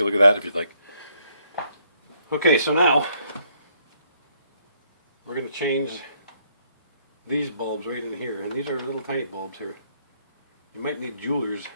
look at that if you'd like. Okay, so now we're going to change these bulbs right in here, and these are little tiny bulbs here. You might need a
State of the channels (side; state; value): both; inverted; correlation -0.70